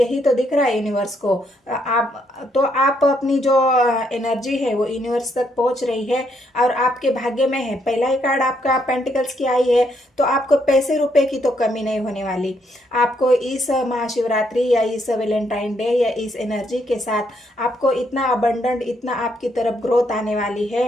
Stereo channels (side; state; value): both; normal; correlation 0.74